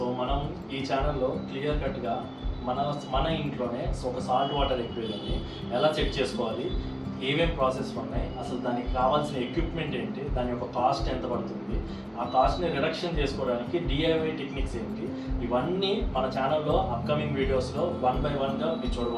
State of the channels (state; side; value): identical; both; correlation 1.00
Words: మనం ఈ ఛానల్లో క్లియర్ కట్గా మన ఇంట్లోనే ఒక సాల్ట్ వాటర్ ఎక్వేరియంని ఎలా చెక్ చేసుకోవాలి, ఏమేం ప్రాసెస్ ఉన్నాయి, అసలు దానికి కావాల్సిన ఎక్విప్మెంట్ ఏంటి, దాని యొక్క కాస్ట్ ఎంత పడుతుంది, ఆ కాస్ట్ని రిడక్షన్ చేసుకోవడానికి డిఐవై టెక్నిక్స్ ఏంటి, ఇవన్నీ మన ఛానల్లో అప్కమింగ్ వీడియోస్లో 1 by 1గా మీరు